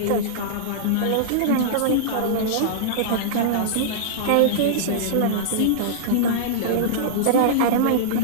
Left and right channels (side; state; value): both; different; correlation -0.02